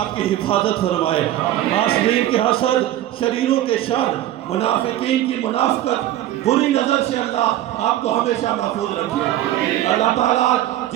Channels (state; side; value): quieter; left; 13.5 dB